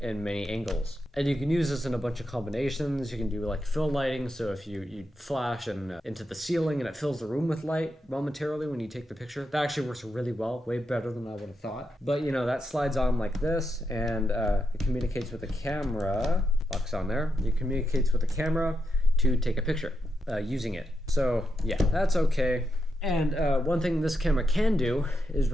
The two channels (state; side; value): normal; both; correlation 0.84